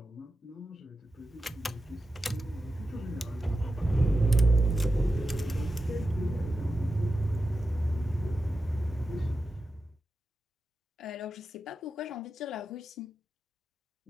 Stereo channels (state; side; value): normal; both; correlation 0.90